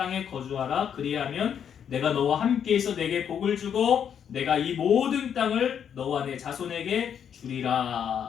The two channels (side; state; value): right; quieter; 8.3 dB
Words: 거주하라. 그리하면 내가 너와 함께해서 내게 복을 주고 내가 이 모든 땅을 너와 내 자손에게